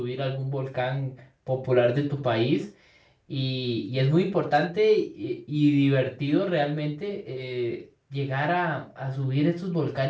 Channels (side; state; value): both; identical; correlation 1.00